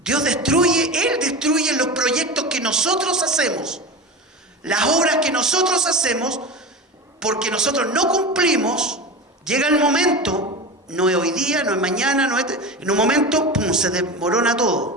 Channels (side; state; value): both; normal; correlation 0.27